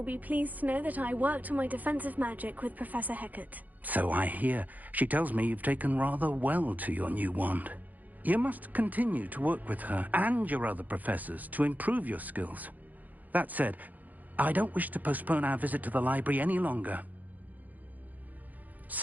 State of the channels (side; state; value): left; late; 0.081 ms